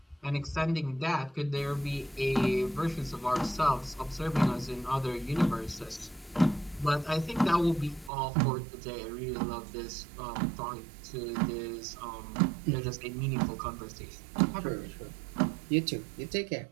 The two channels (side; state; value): left; drops out; at 8.1 s